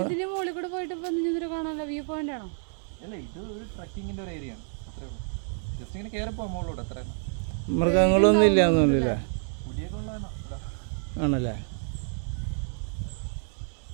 മൃഗങ്ങളൊന്നും ഇല്ല എന്നുണ്ടല്ലേ. ആണല്ലേ.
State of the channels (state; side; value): silent; left; 59 dB below the other